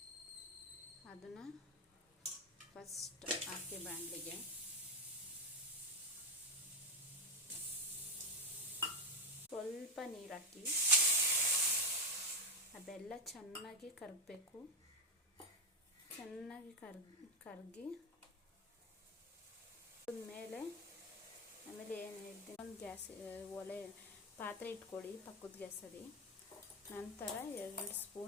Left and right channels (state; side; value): normal; both; correlation 0.13